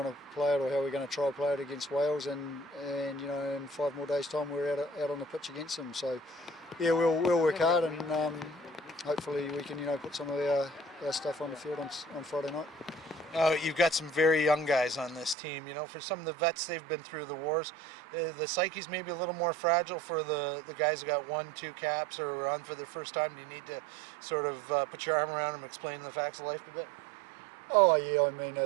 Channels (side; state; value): left; drops out; at 15.4 s